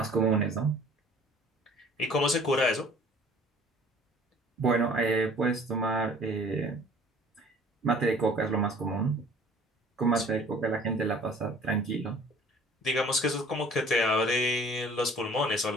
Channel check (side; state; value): both; normal; correlation 0.51